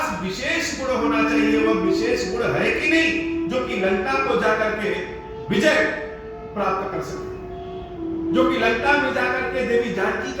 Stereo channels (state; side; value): identical; both; correlation 1.00